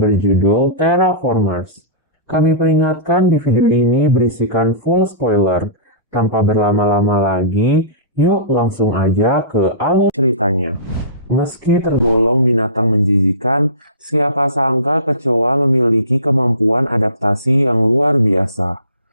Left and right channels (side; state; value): both; inverted; correlation -0.33